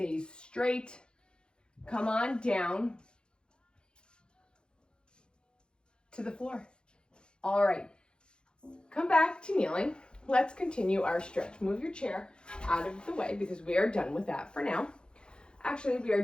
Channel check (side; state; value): right; late; 0.050 ms